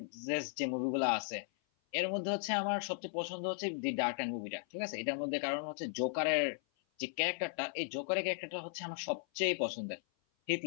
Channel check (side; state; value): right; silent; 53 dB below the other